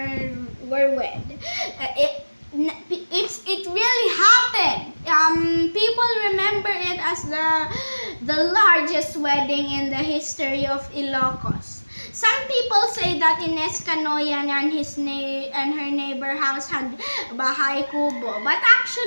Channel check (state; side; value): inverted; both; correlation -1.00